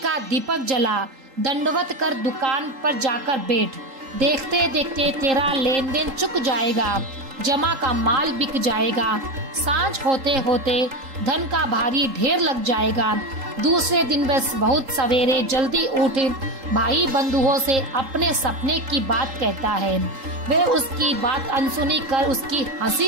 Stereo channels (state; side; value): late; left; 3.8 ms